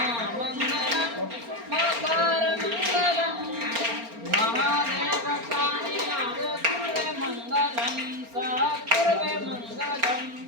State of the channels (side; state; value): left; late; 4.3 ms